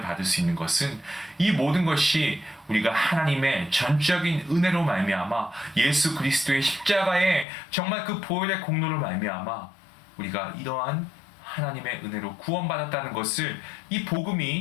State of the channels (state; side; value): drops out; right; at 7.5 s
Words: 받을 수 있는 것은 이 모든 것이 우리가 하나님의 전적인 은혜로 말미암아 예수 그리스도의 십자가에 정말 그 보혈의 공로로 말미암아 우리가 이러한 하나님의 은혜로 구원받았다는 것을 이